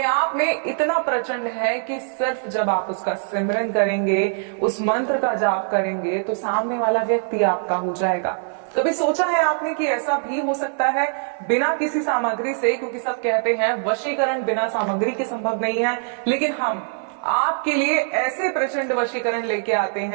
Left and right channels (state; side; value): silent; left; 57 dB below the other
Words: आप में इतना प्रचंड है कि सिर्फ जब आप उसका सिमरन करेंगे, उस मंत्र का जाप करेंगे, तो सामने वाला व्यक्ति आपका हो जाएगा। कभी सोचा है आपने कि ऐसा भी हो सकता है बिना किसी सामग्री से? क्योंकि सब कहते हैं वशीकरण बिना सामग्री के संभव नहीं है, लेकिन हम आपके लिए ऐसे प्रचंड वशीकरण लेके आते